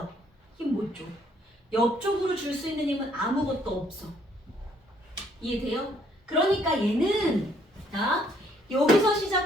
힘 못 줘. 옆쪽으로 줄 수 있는 힘은 아무것도 없어. 이해돼요? 그러니까 얘는 자, 여기서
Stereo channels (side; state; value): both; normal; correlation 0.66